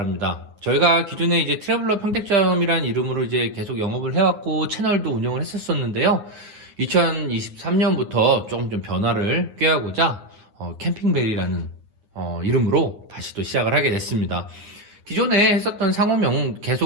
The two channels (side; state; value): left; late; 9.7 ms